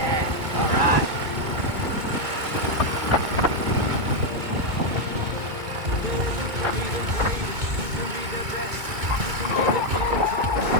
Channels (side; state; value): left; late; 2.2 ms